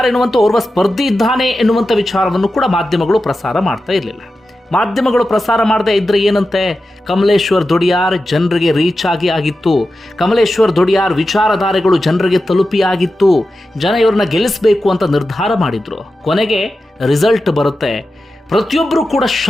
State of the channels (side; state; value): both; normal; correlation 0.92